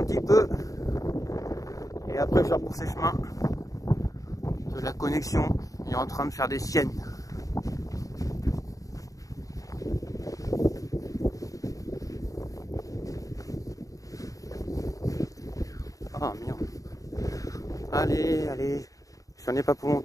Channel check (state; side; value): late; right; 0.16 ms